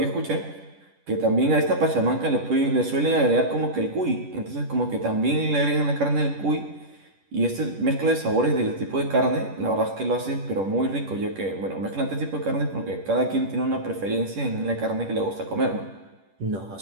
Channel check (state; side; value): late; left; 10 ms